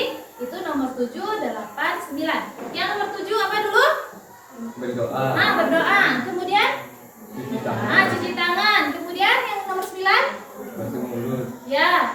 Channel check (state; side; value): identical; both; correlation 1.00